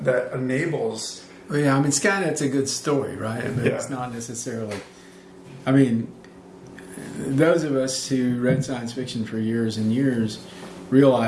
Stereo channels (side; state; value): both; identical; correlation 1.00